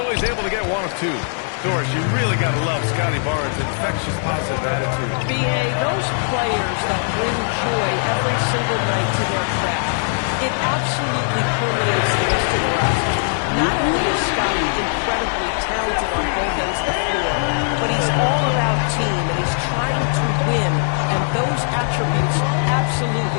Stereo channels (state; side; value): silent; right; 61 dB below the other